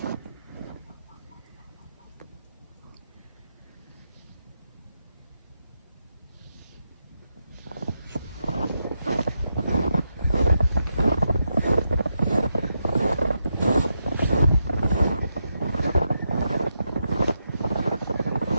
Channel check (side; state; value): both; inverted; correlation -0.85